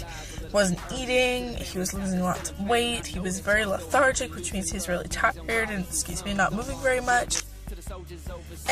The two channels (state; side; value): identical; both; correlation 1.00